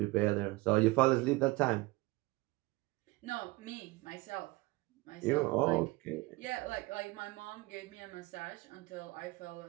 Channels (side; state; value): left; quieter; 21.9 dB